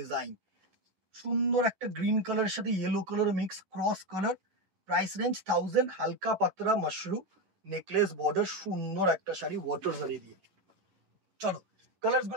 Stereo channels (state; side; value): late; left; 11 ms